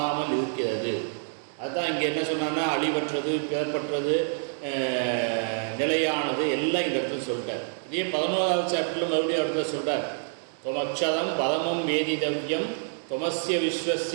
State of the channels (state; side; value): silent; left; digital silence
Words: இருக்கிறது. அதுதான் இங்கே என்ன சொன்னான்னா, அழிவற்றது, பிறப்பற்றது, நிலையானது எல்லாம் இந்த இடத்துல சொல்லிட்டார். இதே 11வது சாப்டரில் மறுபடியும் இடத்துல சொல்கிறார். தொமக்ஷதம் பதமம் வேதிதவ்யம் தொமஸ்ய